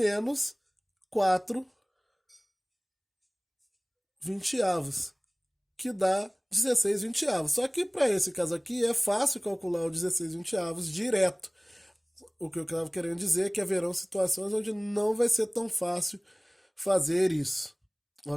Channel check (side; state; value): both; identical; correlation 1.00